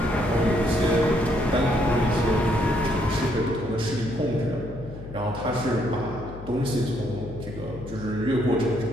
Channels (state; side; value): noise; left; hum, 13 dB below the sound